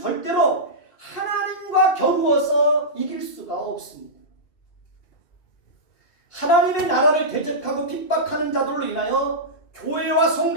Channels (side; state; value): right; late; 2.5 ms